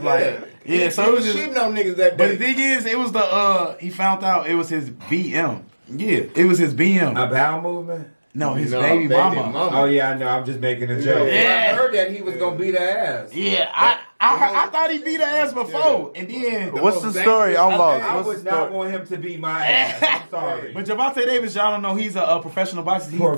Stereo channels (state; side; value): inverted; both; correlation -1.00